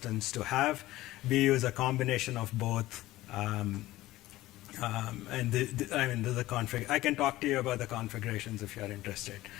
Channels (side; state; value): right; quieter; 16.7 dB